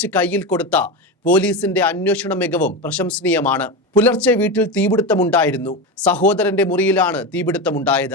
കയ്യിൽ കൊടുത്ത പോലീസിന്റെ അന്വേഷണ മികവും പ്രശംസനീയമാണ്. പുലർച്ചെ വീട്ടിൽ തീപിടുത്തമുണ്ടായിരുന്നു. സഹോദരന്റെ മുറിയിലാണ്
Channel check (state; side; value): normal; both; correlation 0.19